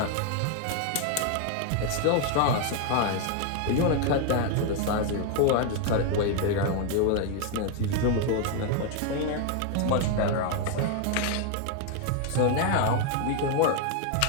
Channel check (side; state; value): both; different; correlation 0.00